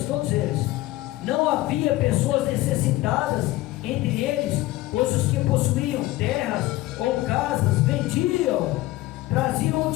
todos eles. Não havia pessoas necessitadas entre eles, pois os que possuíam terras ou casas vendiam, traziam o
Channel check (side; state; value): right; quieter; 17.7 dB